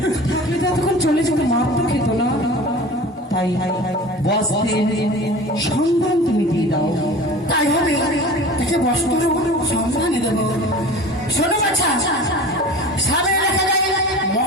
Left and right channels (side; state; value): both; normal; correlation 0.38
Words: থাকলে তো এতক্ষণ চলে যেত, মাপ তো খেত না। তাই বস্ত্রের সন্ধান তুমি দিয়ে দাও। তাই হবে, তাকে বস্ত্র সন্ধানে দেব। শোনো বাছা, সামনে লেখা যায়